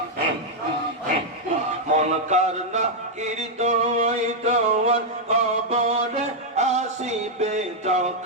মনকার নাকির দোয়াই তোমার কবরে আসিবে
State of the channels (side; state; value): both; normal; correlation -0.03